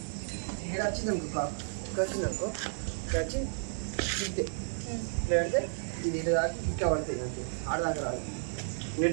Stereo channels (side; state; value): left; silent; digital silence